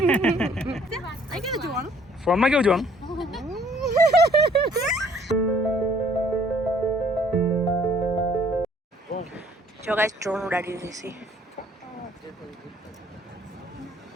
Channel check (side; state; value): both; normal; correlation 0.60